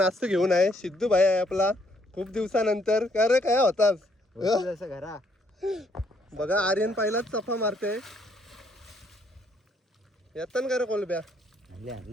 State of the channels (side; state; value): both; normal; correlation 0.69